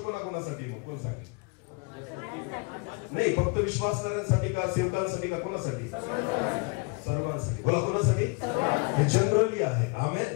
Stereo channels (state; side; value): quieter; right; 29.9 dB